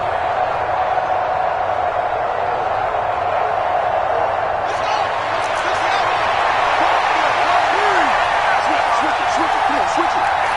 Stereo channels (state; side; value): identical; both; correlation 1.00